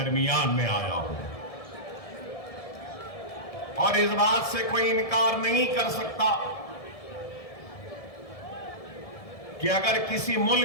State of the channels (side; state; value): right; late; 1.7 ms